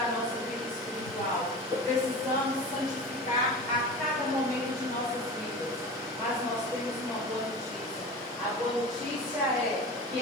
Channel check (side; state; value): both; normal; correlation 0.33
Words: a nossa vida espiritual. Precisamos santificar a cada momento de nossas vidas. Mas nós temos uma boa notícia. A boa notícia é que